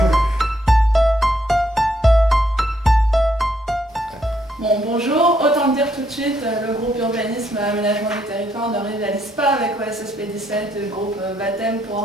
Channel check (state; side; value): normal; both; correlation 0.73